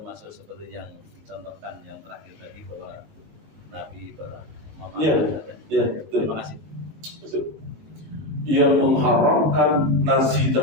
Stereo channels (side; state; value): left; late; 19 ms